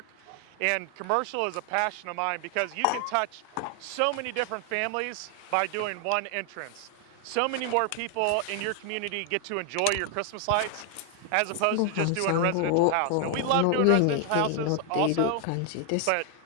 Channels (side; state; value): both; different; correlation 0.00